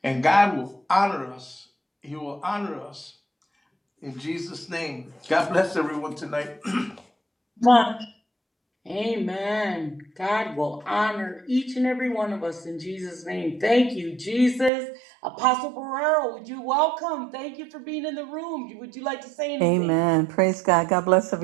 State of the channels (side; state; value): left; drops out; at 14.7 s